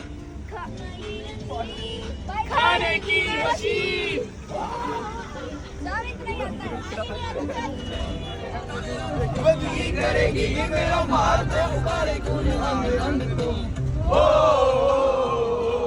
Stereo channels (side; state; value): both; identical; correlation 1.00